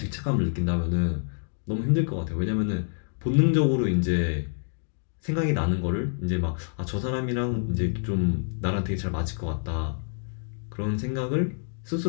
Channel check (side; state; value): right; silent; digital silence